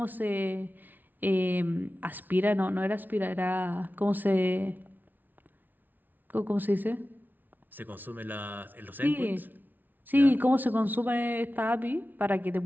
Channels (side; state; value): left; late; 0.085 ms